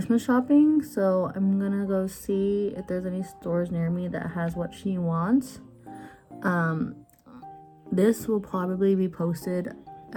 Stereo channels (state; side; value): identical; both; correlation 1.00